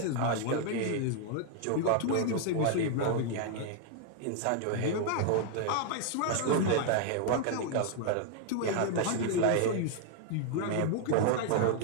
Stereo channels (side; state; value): both; different; correlation 0.00